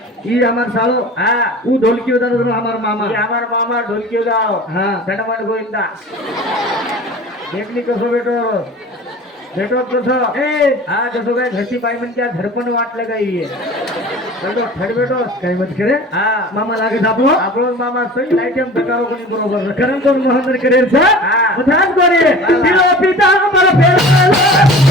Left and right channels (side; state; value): both; normal; correlation 0.40